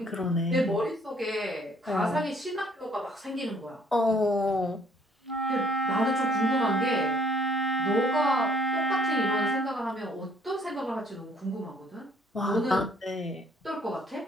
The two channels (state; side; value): normal; both; correlation 0.62